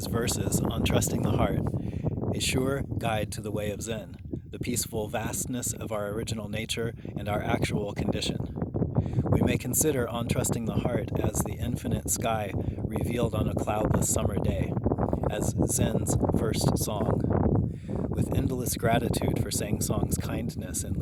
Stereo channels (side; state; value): both; identical; correlation 1.00